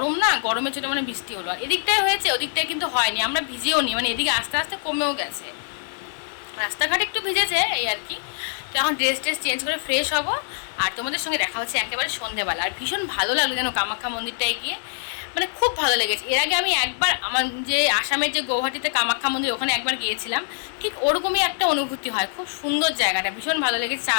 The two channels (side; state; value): right; silent; 63 dB below the other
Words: না, গরমের জন্য মানে বৃষ্টি হলো। আর এদিকটায় হয়েছে, ওদিকটায় কিন্তু হয়নি, আমরা ভিজেও নি, মানে এদিকে আস্তে আস্তে কমেও গেছে, রাস্তাঘাট একটু ভিজেছে এই আর কি। তো এখন ড্রেস চেঞ্জ করে ফ্রেশ হব, আর তোমাদের সঙ্গে দেখা হচ্ছে একেবারে সন্ধেবেলা। আর ভীষণ ভালো লাগলো যেন কামাখ্যা মন্দিরটায় গিয়ে, মানে খুব ভালো লেগেছে। এর আগে আমি একবার আমার যে আসামের যে গৌহাটিতে কামাখ্যা মন্দির, ওখানে একবার গিয়েছিলাম, ঠিক ওরকমই একটা অনুভূতি হয়। খুব সুন্দর জায়গাটা, ভীষণ ভালো লেগেছে, চা